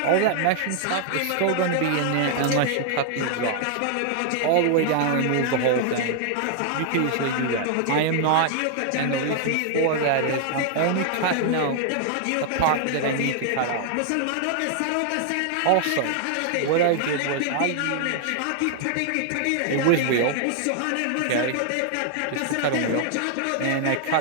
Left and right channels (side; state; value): both; different; correlation 0.00